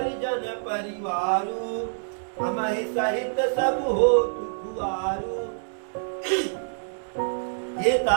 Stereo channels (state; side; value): silent; left; digital silence